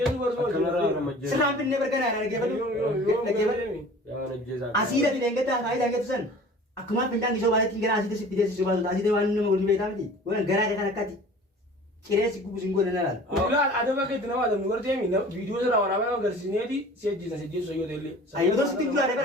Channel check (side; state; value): both; normal; correlation 0.44